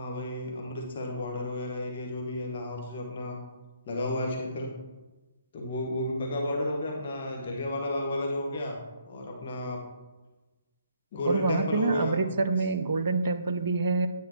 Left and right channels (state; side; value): inverted; both; correlation -0.67